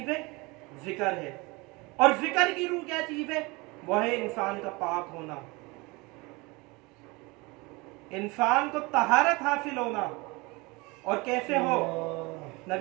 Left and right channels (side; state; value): left; quieter; 25.1 dB